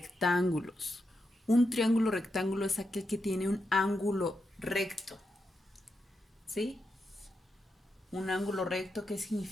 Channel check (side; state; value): both; normal; correlation 0.85